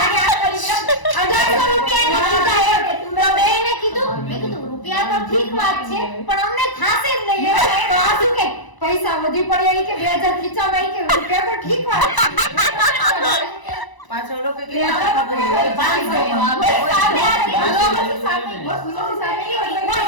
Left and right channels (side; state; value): right; late; 1.0 ms